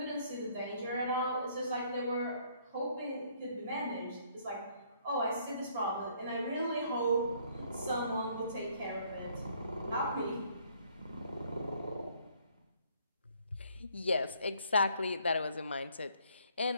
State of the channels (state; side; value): inverted; both; correlation -0.64